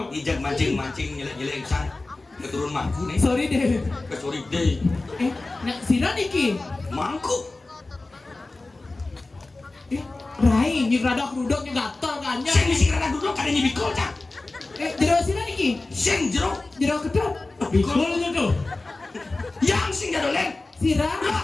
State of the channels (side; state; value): right; quieter; 3.2 dB